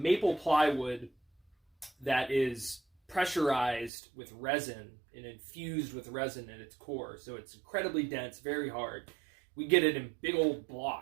plywood that is pressurized with resin and infused with resin at its core. So it's incredibly dense, very hard. We get it in big old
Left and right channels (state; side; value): drops out; left; at 3.9 s